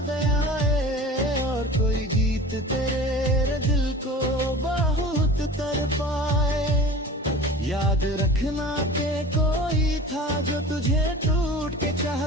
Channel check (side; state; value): both; normal; correlation 0.39